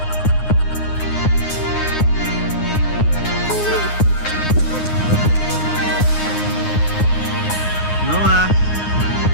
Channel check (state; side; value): late; right; 9.6 ms